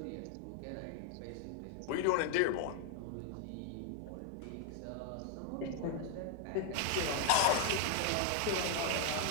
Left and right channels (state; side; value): different; both; correlation 0.00